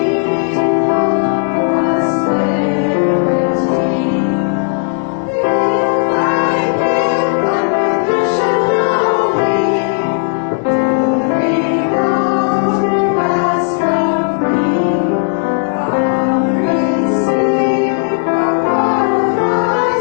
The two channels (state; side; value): silent; right; 59 dB below the other